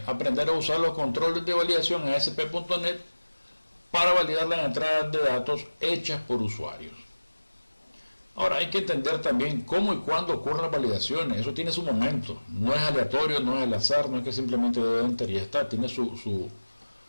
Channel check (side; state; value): both; inverted; correlation -1.00